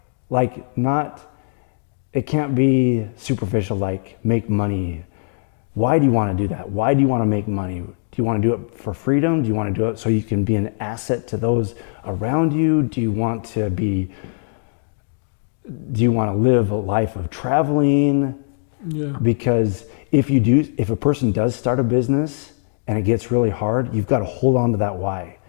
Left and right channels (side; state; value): right; silent; digital silence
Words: Like, it can't be superficial, like make money. Why do you want to do that? Why do you want to make money? Do you want to do it for freedom? Do you want to do it so you can be an asset to those around you? Do you want to live a life of traveling? Yeah. Because if a person does start a business and it gets really hard, you've got to hold on to that why.